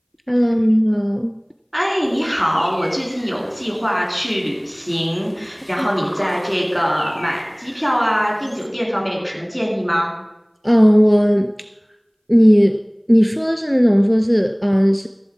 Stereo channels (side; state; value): both; identical; correlation 1.00